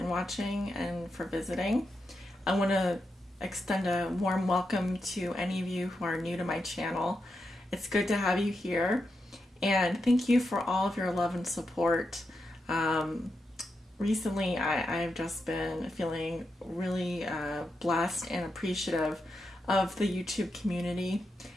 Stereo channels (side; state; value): both; normal; correlation 0.86